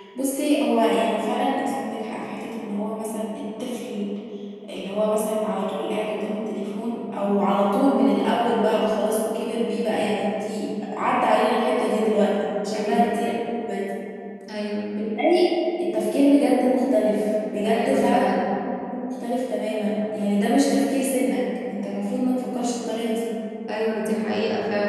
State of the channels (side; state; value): both; identical; correlation 1.00